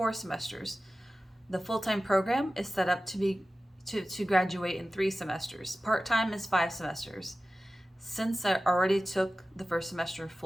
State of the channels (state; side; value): normal; both; correlation 0.95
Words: semesters. The full-time program is set up to graduate in 3 semesters. Part-time is 5 semesters. Since I already took the first semester